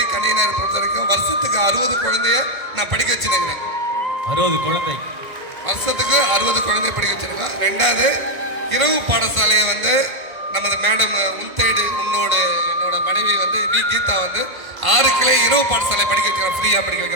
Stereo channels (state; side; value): late; left; 1.5 ms